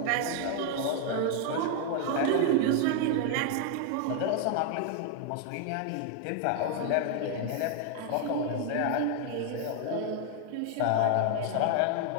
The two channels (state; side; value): different; both; correlation 0.00